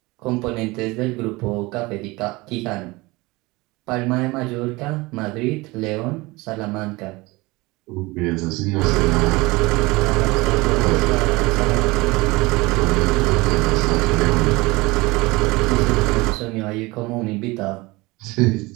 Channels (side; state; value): left; quieter; 22.7 dB